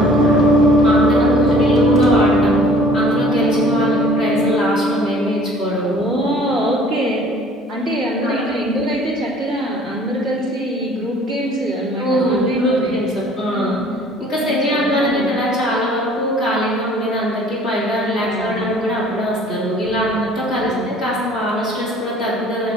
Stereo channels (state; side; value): normal; both; correlation 0.52